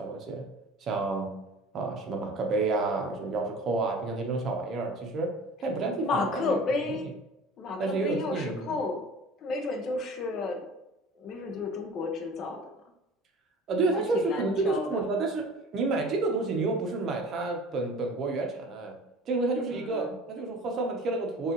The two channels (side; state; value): both; normal; correlation 0.42